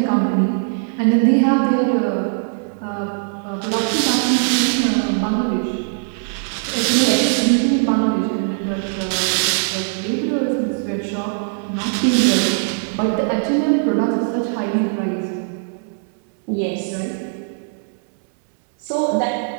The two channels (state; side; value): silent; left; 63 dB below the other